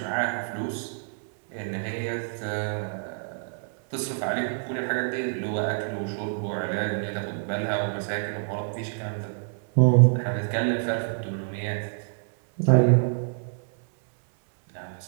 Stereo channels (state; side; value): silent; left; digital silence